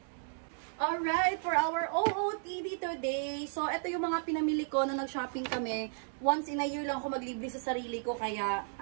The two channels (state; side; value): silent; left; digital silence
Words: Alright, for our OOTD today. So, ito yung mga pinamili ko na nag-shopping kami. Once in a year lang ako maglibre sa sarili ko. Kaya,